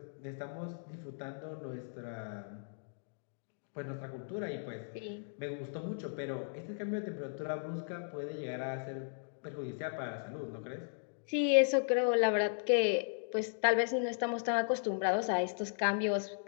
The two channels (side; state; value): right; silent; digital silence